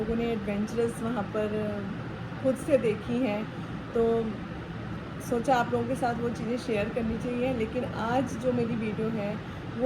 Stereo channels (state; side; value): identical; both; correlation 1.00